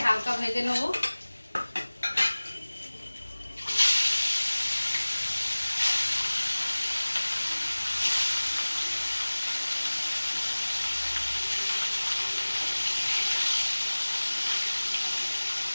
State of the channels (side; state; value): both; inverted; correlation -1.00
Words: হালকা ভেজে নেবো।